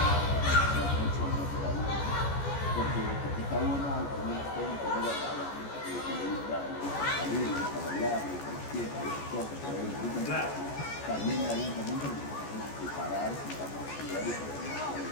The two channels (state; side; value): late; right; 14 ms